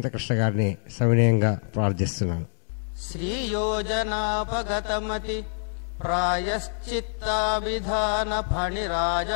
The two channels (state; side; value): silent; right; 61 dB below the other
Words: గారిని సవినయంగా ప్రార్థిస్తున్నాను. శ్రీయోజనాపగతమతి ప్రాయశ్చిత్తాభిధాన